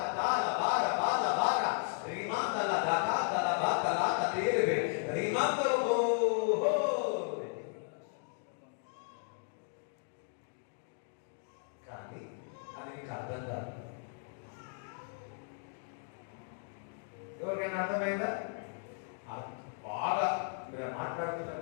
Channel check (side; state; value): right; silent; 54 dB below the other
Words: కతాల బార బాల బార రిమందల దకాతల బాకల కతేరే రిమందరు హో. కానీ అది నీకు అర్థం కాదు. ఎవరికైనా అర్థమైందా? బాగా మీరు మాట్లాడుతుంటే